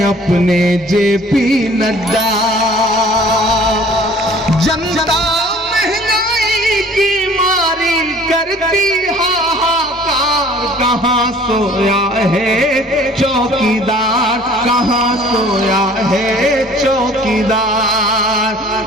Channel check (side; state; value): both; normal; correlation 0.51